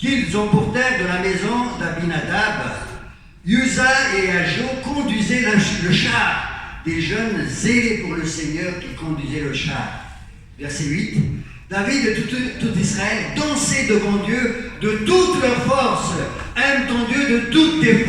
emportèrent de la maison d'Abinadab. Uza et Ajo conduisaient le char, des jeunes zélés pour le Seigneur qui conduisaient le char. Verset 8. David et tout Israël dansaient devant Dieu de toute leur force. Aime ton Dieu de toutes tes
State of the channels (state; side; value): identical; both; correlation 1.00